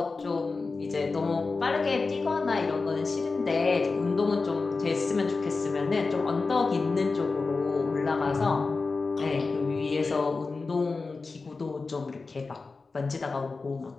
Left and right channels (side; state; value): right; quieter; 4.0 dB